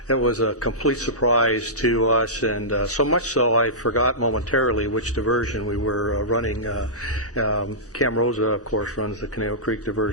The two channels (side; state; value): both; normal; correlation -0.17